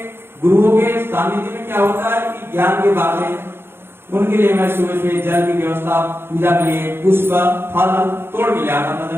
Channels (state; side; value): late; left; 0.11 ms